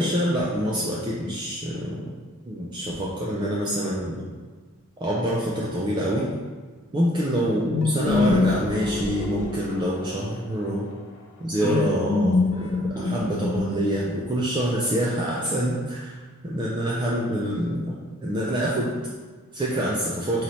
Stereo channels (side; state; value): both; normal; correlation 0.60